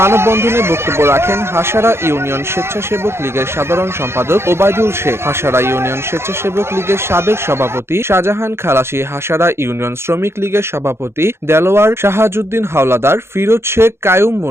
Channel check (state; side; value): late; left; 0.12 ms